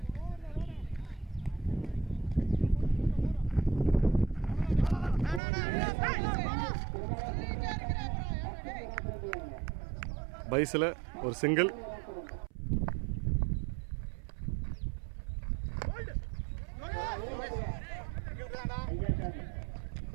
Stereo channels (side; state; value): left; drops out; at 5.4 s